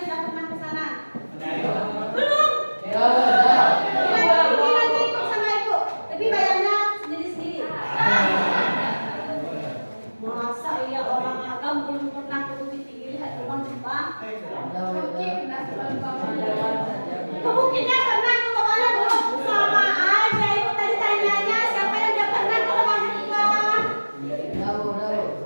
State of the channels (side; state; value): both; inverted; correlation -1.00